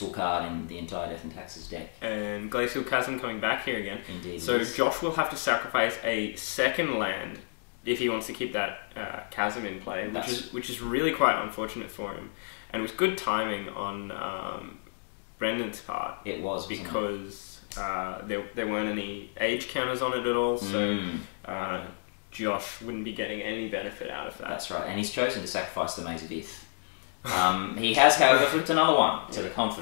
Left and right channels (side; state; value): right; silent; digital silence